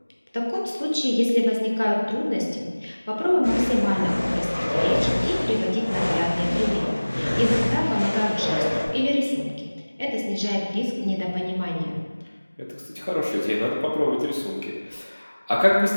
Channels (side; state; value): both; inverted; correlation -1.00